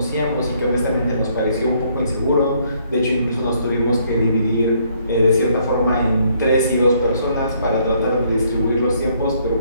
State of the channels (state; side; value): inverted; both; correlation -0.67